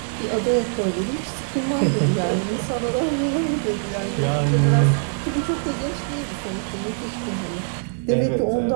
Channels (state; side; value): silent; left; 62 dB below the other